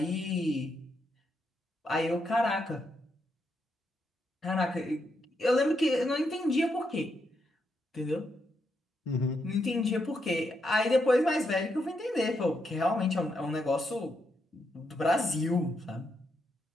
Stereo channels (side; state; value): both; normal; correlation 0.80